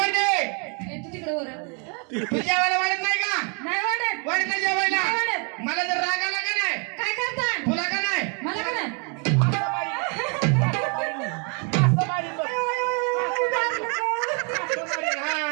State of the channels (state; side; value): quieter; left; 36.7 dB